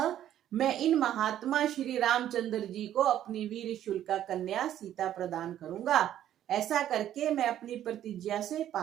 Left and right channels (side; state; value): left; quieter; 11.5 dB